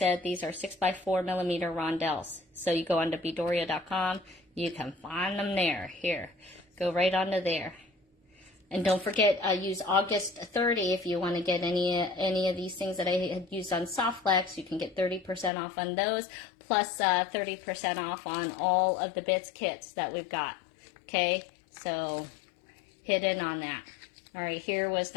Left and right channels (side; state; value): right; drops out; at 15.5 s